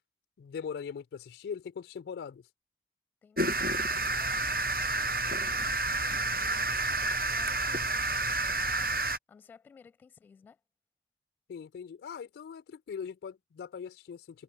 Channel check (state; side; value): normal; both; correlation 0.23